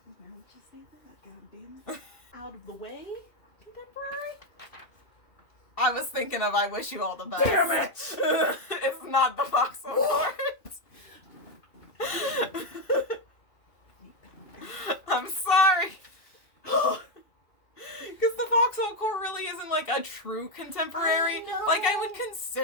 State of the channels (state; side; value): late; right; 2.6 ms